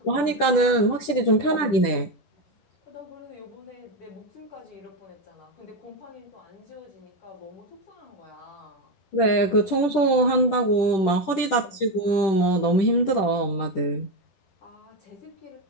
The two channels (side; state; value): right; late; 10 ms